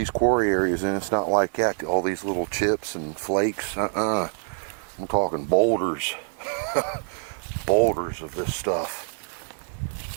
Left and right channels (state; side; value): silent; left; digital silence